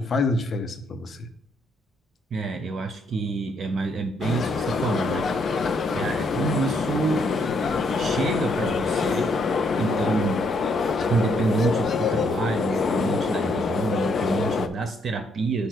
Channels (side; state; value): both; normal; correlation 0.72